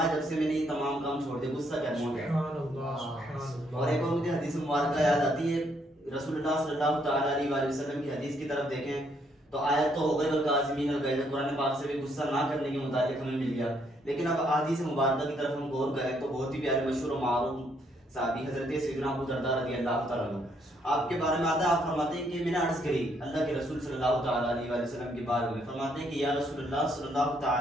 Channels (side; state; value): both; normal; correlation 0.71